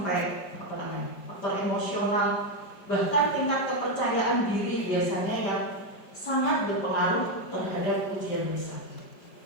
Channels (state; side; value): late; right; 5.3 ms